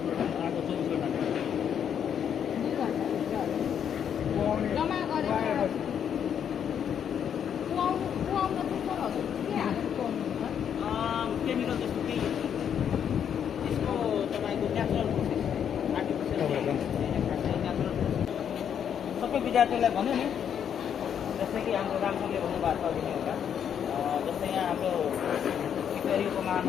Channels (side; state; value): right; quieter; 8.5 dB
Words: आएको 24 घन्टा 2 घन्टा जम्मा गरेर कुहाउन चाहिँ सरहरू के हालेर कुहाउनुहुन्छ केमिकल जस्तो केही त्यसको तपाईँको नेचुरल प्रोसेस आर्टिफिसियल नेचुरल सबै विद्यार्थीलाई भन्यो नि जस्तै कि हाम्रो रामसरले भन्नुभएको छ अघि एउटा जस्तै यहाँ हाम्रो सिक्किम